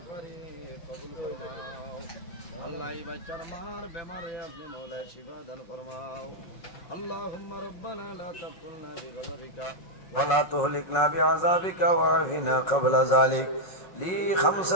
কবুল ফরমাও আল্লাহ এই বাচ্চার মার বেমারে আপনি মওলা শিফা দান ফরমাও আল্লাহুম্মা রব্বানা লা তাকুলনা বিগযবিকা ولا تهلكنا بعذابك وعافنا قبل ذلك لي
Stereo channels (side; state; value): right; late; 5.5 ms